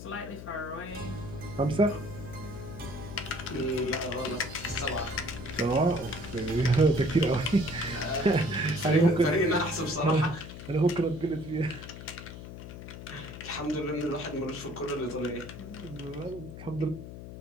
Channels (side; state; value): left; noise; hum, 12 dB below the sound